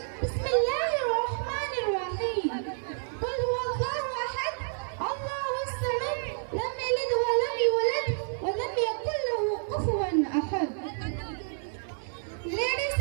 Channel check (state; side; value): silent; left; 58 dB below the other